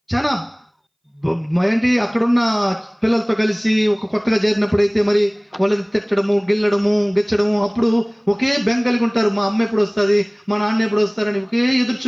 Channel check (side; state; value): both; identical; correlation 1.00